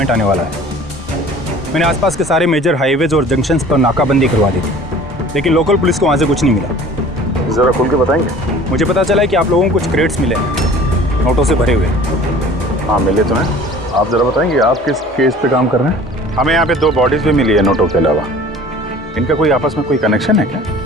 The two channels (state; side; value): normal; both; correlation 0.47